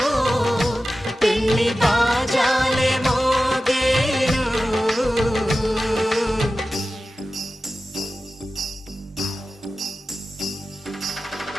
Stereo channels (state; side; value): normal; both; correlation 0.94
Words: పెళ్లి బాజాలే మోగేను.